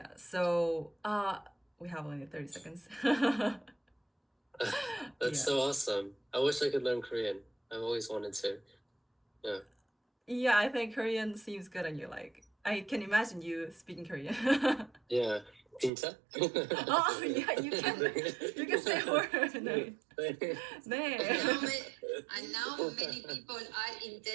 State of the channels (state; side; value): drops out; left; at 15.9 s